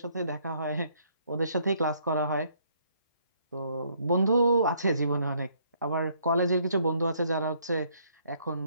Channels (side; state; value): both; inverted; correlation -0.67